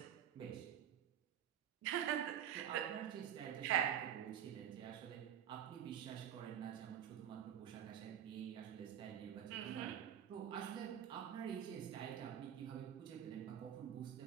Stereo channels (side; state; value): left; quieter; 9.8 dB